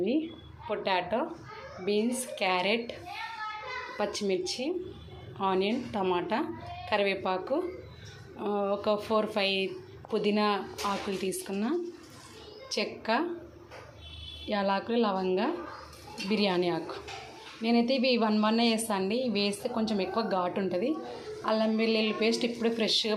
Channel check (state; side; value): identical; both; correlation 1.00